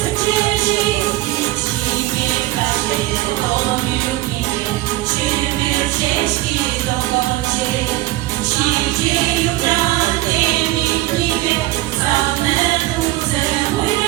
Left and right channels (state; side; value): quieter; left; 17.7 dB